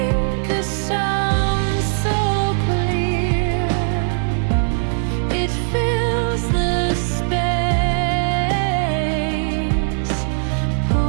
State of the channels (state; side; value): silent; left; 59 dB below the other